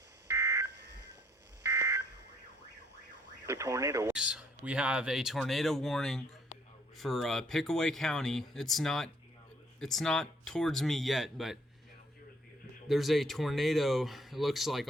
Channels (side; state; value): both; normal; correlation 0.64